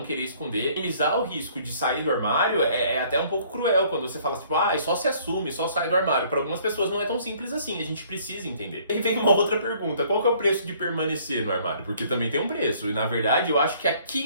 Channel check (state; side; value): inverted; both; correlation -0.59